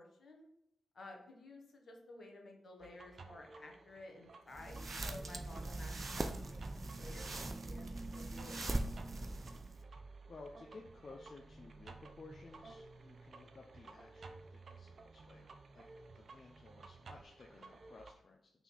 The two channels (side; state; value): both; normal; correlation 0.94